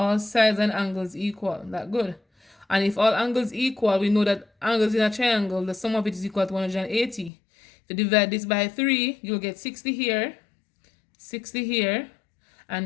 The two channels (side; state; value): right; drops out; at 7.3 s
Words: sides and angles equal. That good. And if all angles equal, we know that angles in a triangle, the sum of it is equal to 180. If you divide this by 3, you'll get 60 here, 60 here,